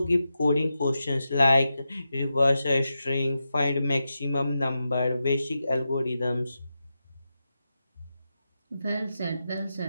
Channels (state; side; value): inverted; both; correlation -0.89